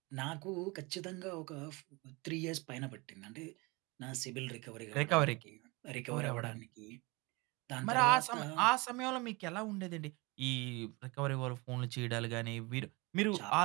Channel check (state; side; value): quieter; left; 25.9 dB